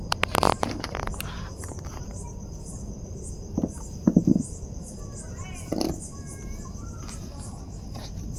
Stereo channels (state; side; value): identical; both; correlation 1.00